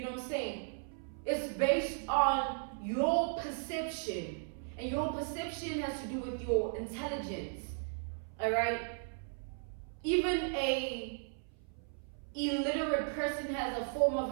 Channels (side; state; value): left; silent; 54 dB below the other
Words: know what I'm saying? It's based on your perception. And your perception has to do with your intelligence. All right? Even a illiterate person has a form